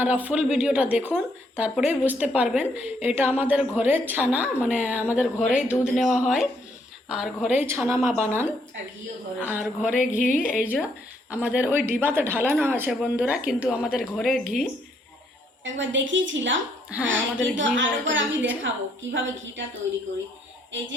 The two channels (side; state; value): both; normal; correlation 0.71